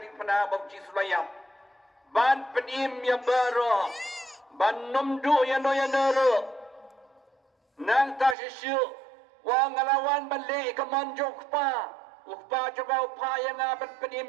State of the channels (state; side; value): drops out; left; at 8.3 s